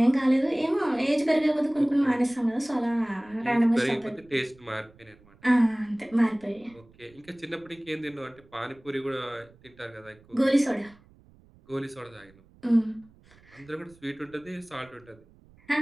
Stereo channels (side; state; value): right; noise; rumble, 27 dB below the sound